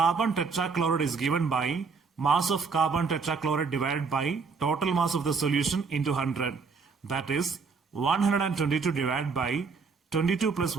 tetrachloride is given by mass of carbon tetrachloride divided by total mass of the solution into 100. That is 122 divided by 22 plus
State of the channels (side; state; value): left; quieter; 5.0 dB